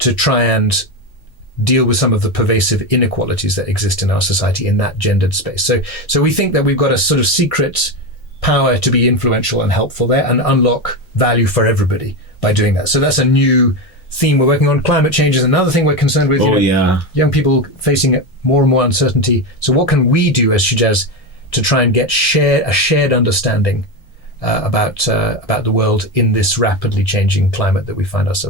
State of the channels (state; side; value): normal; both; correlation 0.16